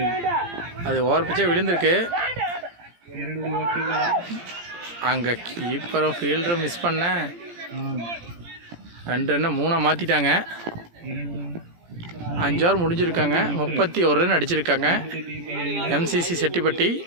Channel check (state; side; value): late; left; 17 ms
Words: அது ஓவர் பிச்சே விழுந்திருக்கு. அங்கே கீப்பரும் ஃபீல்டரும் மிஸ் பண்ண 2 ரன்னை 3 மாற்றிட்டாங்க. 5 ஓவர் முடிஞ்சிருக்காங்க. 31 ரன் அடிச்சிருக்காங்க. எம்சிசி செட்டிப்பட்டி